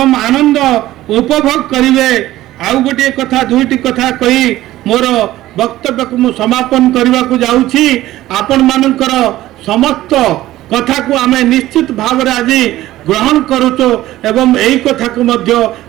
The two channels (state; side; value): quieter; left; 15.4 dB